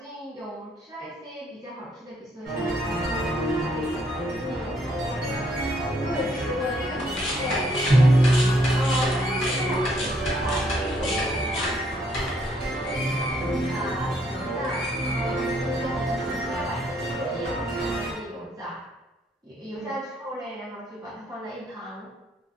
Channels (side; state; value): both; normal; correlation 0.70